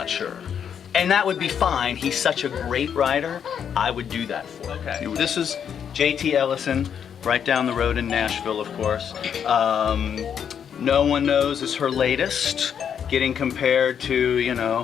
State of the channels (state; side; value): quieter; right; 8.1 dB